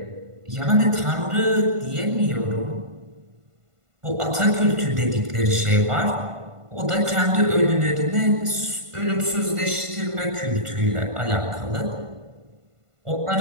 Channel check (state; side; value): late; left; 1.5 ms